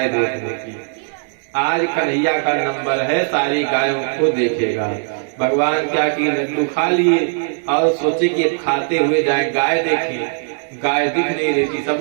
देखने की। आज कन्हैया का नंबर है, सारी गायों को देखेगा। भगवान क्या की लड्डू खा लिए और सोचे कि खाते हुए जाए गाय देखें, गाय दिख नहीं रही थी।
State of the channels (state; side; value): silent; left; digital silence